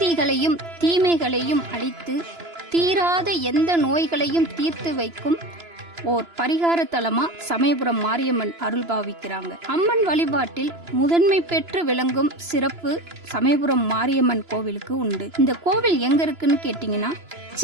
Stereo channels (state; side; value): late; left; 2.9 ms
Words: தீமைகளையும் அழித்து தீராத எந்த நோய்களையும் தீர்த்து வைக்கும் ஓர் பரிகார தலமா சமயபுரம் மாரியம்மன் அருள் பாவிக்கிறாங்க. அம்மன் வழிபாட்டில் முதன்மை பெற்று விளங்கும் சிறப்பு சமயபுரம் மாரியம்மன் கோவிலுக்கு உண்டு. இந்த கோவில் எங்க இருக்குன்னு கேட்டீங்கன்னா,